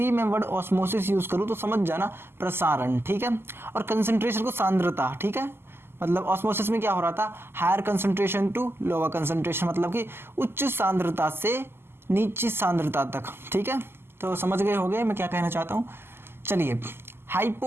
मैं वर्ड ऑस्मोसिस यूज़ करूँ तो समझ जाना प्रसारण, ठीक है। और कंसंट्रेशन को सांद्रता, ठीक है। मतलब ऑस्मोसिस में क्या हो रहा था, higher concentration to lower concentration, मतलब कि उच्च सांद्रता से नीची सांद्रता तक, ठीक है। तो समझ गए होंगे मैं क्या कहना चाहता हूँ। चलिए,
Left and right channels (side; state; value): left; late; 0.12 ms